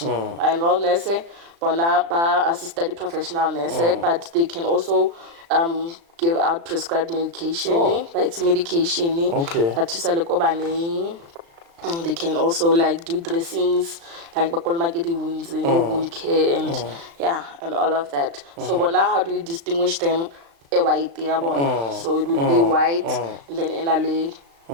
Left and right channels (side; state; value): left; late; 36 ms